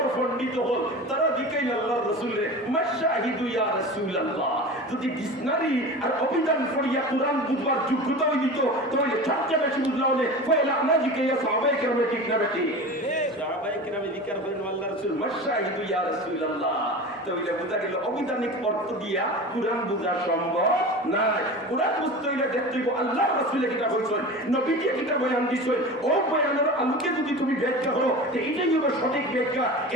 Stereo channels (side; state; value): both; normal; correlation 0.32